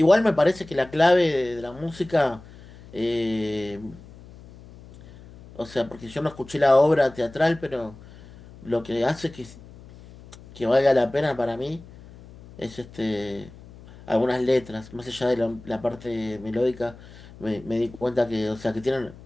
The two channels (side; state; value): left; noise; hum, 20 dB below the sound